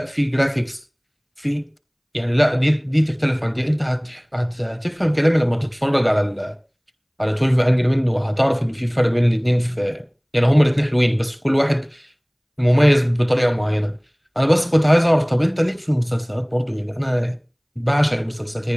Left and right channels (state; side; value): identical; both; correlation 1.00